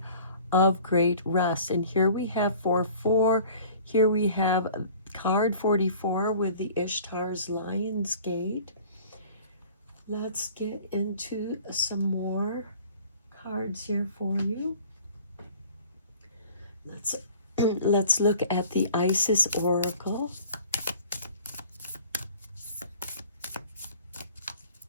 of great rest. And here we have 4-4. Here we have card 44 with the Ishtar's Lion's Gate. Let's get into some more cards here for you. Let's look at the Isis Oracle.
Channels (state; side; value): inverted; both; correlation -0.47